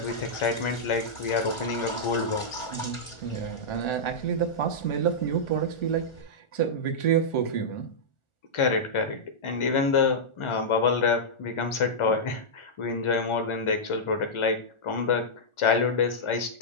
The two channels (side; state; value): right; late; 1.4 ms